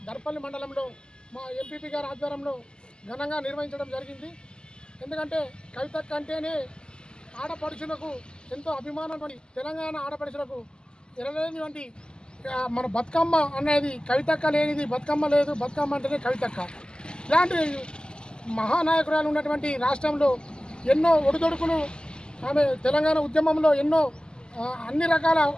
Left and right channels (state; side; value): late; right; 0.047 ms